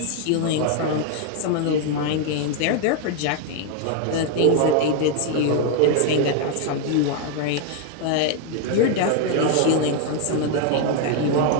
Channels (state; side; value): different; both; correlation 0.00